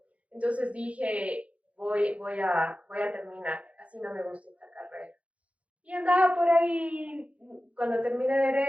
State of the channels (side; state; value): left; late; 0.064 ms